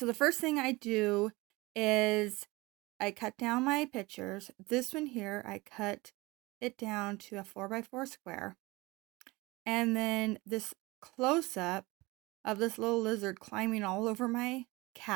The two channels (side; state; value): left; quieter; 22.5 dB